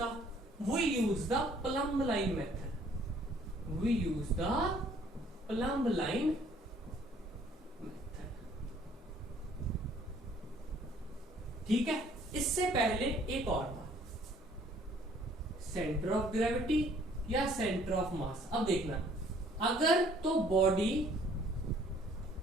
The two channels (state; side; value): normal; both; correlation 0.59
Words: We use the plumb line method. We use the plumb line method. ठीक है, इससे पहले एक और था, सेंटर ऑफ ग्रेविटी या सेंटर ऑफ मास। अब देखना, अगर तो body,